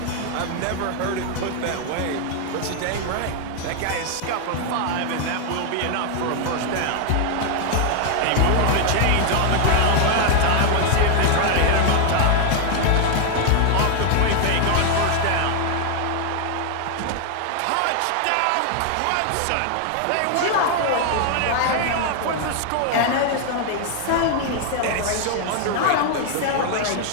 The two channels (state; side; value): different; both; correlation 0.00